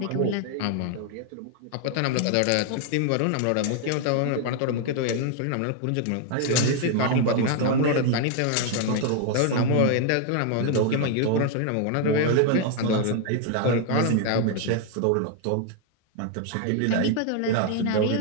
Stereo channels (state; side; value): different; both; correlation 0.00